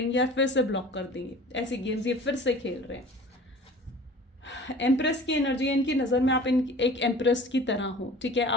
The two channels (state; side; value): normal; both; correlation 0.44